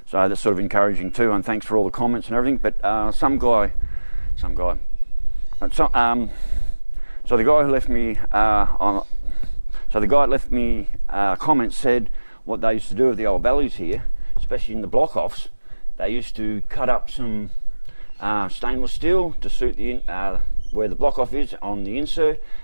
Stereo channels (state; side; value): inverted; both; correlation -1.00